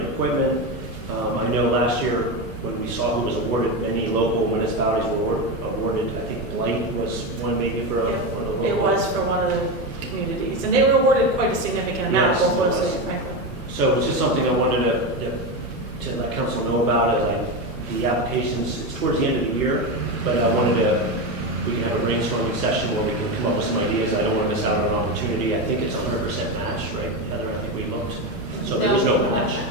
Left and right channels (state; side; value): normal; both; correlation 0.15